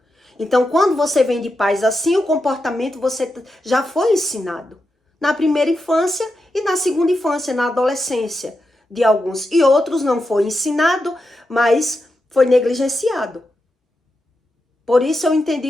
Então, quando você vem de pais assim, o comportamento você já foi ensinado. Na primeira infância e na segunda infância, na adolescência de alguns. E outros não foi ensinado, mas foi negligenciado. Por isso eu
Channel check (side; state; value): both; normal; correlation 0.88